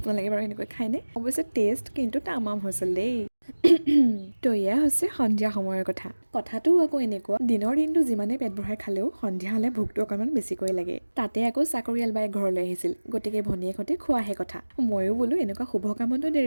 বাৰু এনেকৈ খায়নে? অৱশ্যে টেষ্ট কিন্তু তামাম হৈছিল দেই। তো এয়া হৈছে সন্ধিয়া সময়ৰ কথা। কথাটো আকৌ এনেকুৱা, দিনৰ দিনটো যিমানে পেট ভৰাই খালেও সন্ধিয়া হ'লে ভোকটো অকণমান বেছিকৈ লাগে। তাতে আকৌ চাকৰিয়াল বাই ঘৰলৈ আহিছিল, গতিকে ভনীয়েকহঁতে খোৱাহে কথা। ময়ো বোলো এনেকুৱা শুভ কামতো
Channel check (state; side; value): inverted; both; correlation -1.00